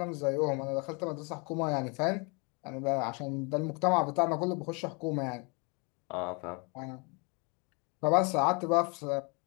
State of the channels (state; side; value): quieter; right; 31.8 dB